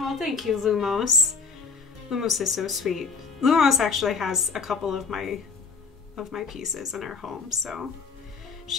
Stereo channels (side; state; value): right; quieter; 5.0 dB